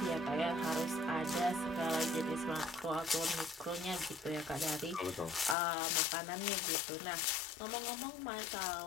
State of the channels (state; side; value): drops out; right; at 5.6 s